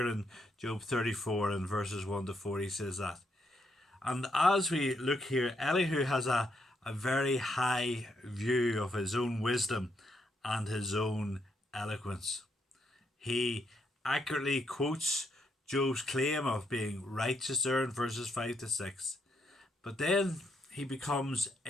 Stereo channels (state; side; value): normal; both; correlation 0.77